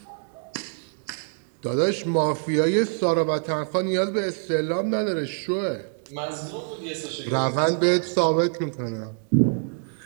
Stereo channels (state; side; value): silent; left; 62 dB below the other